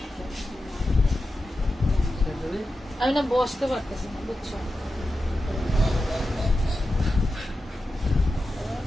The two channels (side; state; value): both; normal; correlation 0.91